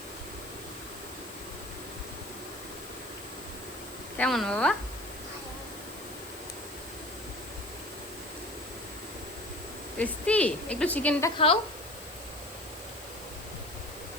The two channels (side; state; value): left; noise; hiss, 15 dB below the sound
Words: কেমন বাবা? টেস্টি। একটু চিকেনটা খাও।